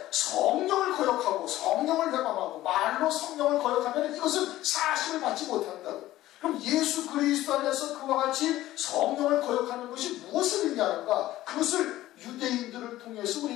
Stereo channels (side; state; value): right; quieter; 15.3 dB